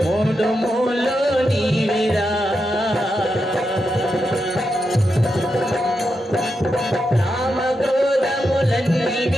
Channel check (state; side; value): normal; both; correlation 0.86